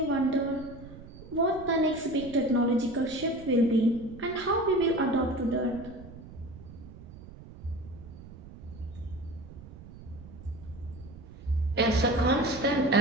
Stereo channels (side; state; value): right; noise; rumble, 16 dB below the sound